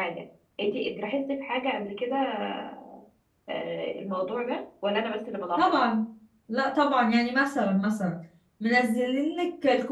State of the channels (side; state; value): both; identical; correlation 1.00